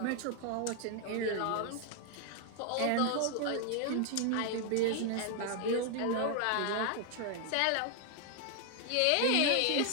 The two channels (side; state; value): both; different; correlation 0.00